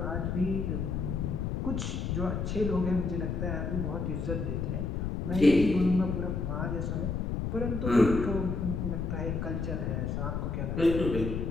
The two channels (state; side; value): noise; left; rumble, 1 dB below the sound